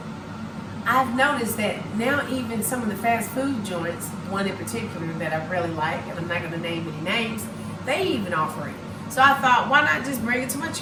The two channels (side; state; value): both; identical; correlation 1.00